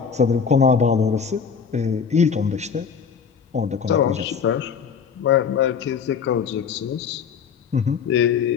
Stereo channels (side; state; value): right; quieter; 6.6 dB